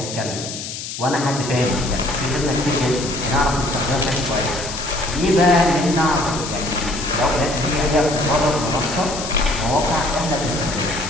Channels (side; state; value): left; noise; hiss, 8 dB below the sound